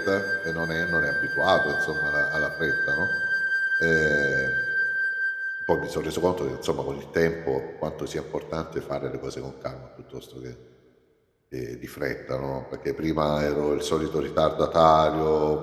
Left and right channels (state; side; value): identical; both; correlation 1.00